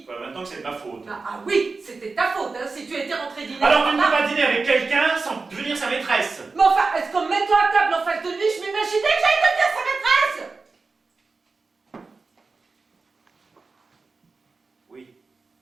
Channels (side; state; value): left; quieter; 4.1 dB